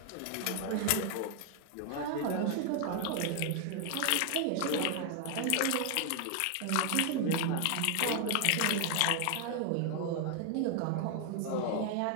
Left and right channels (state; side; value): different; both; correlation 0.00